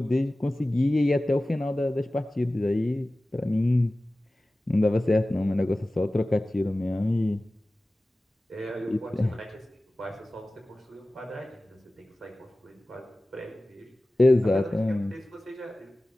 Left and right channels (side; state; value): both; normal; correlation 0.96